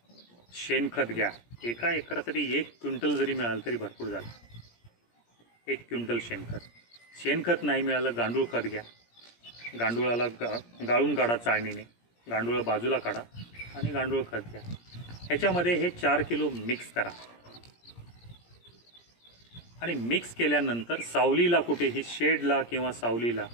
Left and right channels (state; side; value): late; right; 17 ms